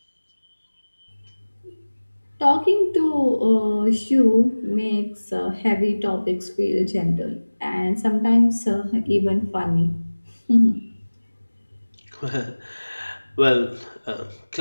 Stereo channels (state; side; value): inverted; both; correlation -1.00